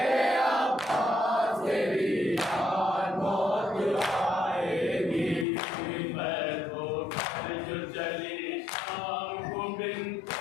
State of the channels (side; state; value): right; drops out; at 5.5 s